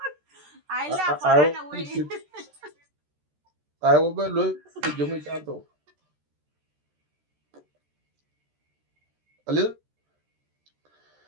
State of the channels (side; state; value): left; late; 13 ms